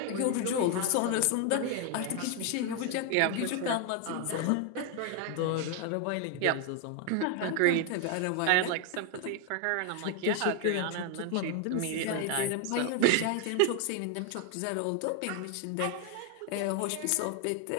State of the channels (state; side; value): different; both; correlation 0.01